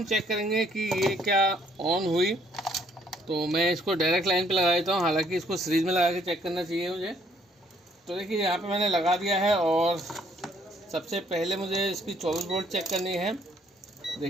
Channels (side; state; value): both; normal; correlation 0.65